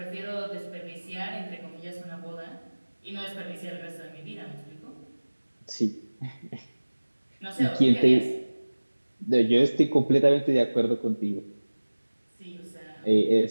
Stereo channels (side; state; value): both; inverted; correlation -1.00